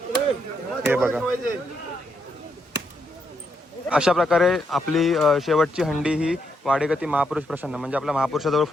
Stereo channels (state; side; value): normal; both; correlation 0.78